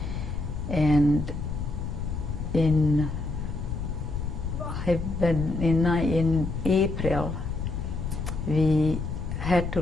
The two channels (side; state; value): left; noise; rumble, 4 dB below the sound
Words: And in April, we had to